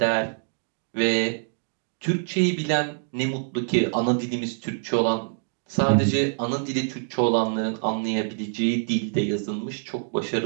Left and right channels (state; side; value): silent; left; digital silence